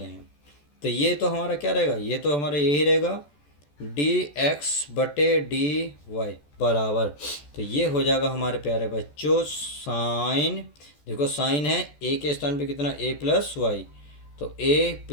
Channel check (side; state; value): right; late; 14 ms